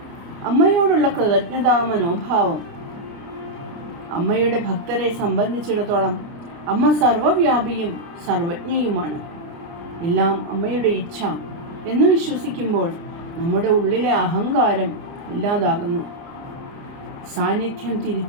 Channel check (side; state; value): left; late; 30 ms